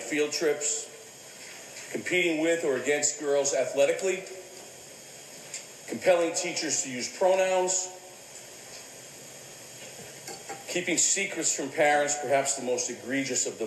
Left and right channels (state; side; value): identical; both; correlation 1.00